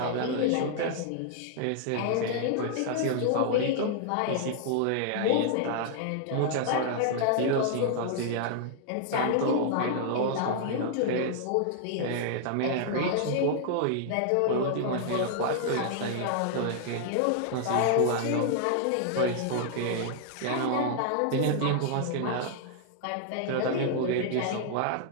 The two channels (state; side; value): different; both; correlation -0.01